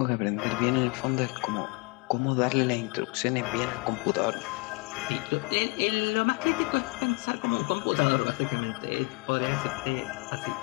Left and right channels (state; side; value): quieter; right; 29.4 dB